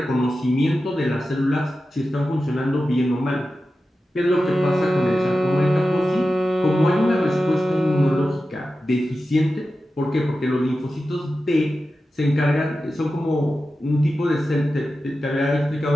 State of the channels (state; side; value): normal; both; correlation 0.92